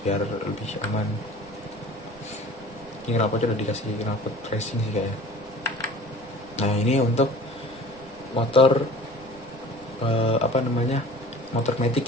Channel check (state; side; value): noise; right; rumble, 25 dB below the sound